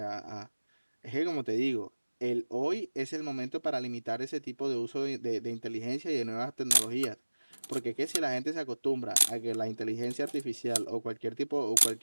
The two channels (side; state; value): both; inverted; correlation -1.00